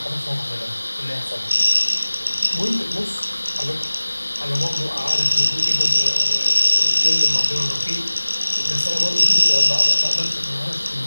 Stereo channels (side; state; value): both; inverted; correlation -1.00